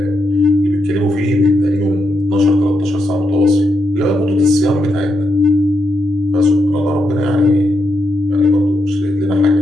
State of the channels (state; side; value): normal; both; correlation 0.83